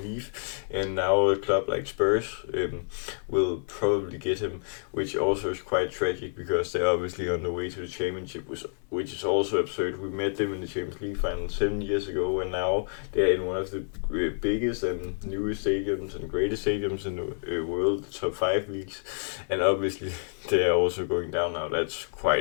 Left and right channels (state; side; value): silent; right; digital silence